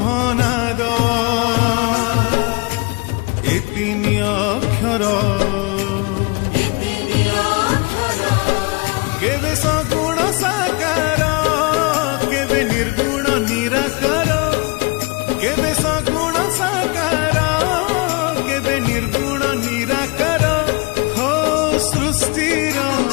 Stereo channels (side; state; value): right; quieter; 28.0 dB